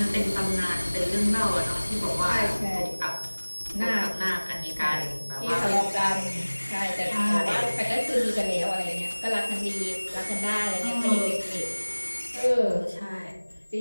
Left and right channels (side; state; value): both; inverted; correlation -1.00